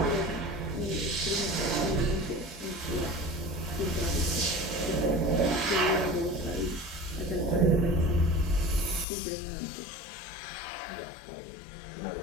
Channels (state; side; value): drops out; right; at 9.1 s